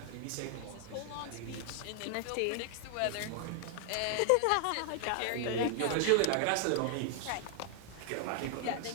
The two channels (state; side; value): different; both; correlation 0.00